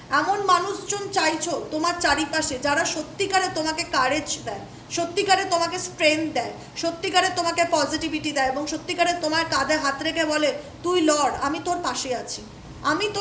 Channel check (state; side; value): identical; both; correlation 1.00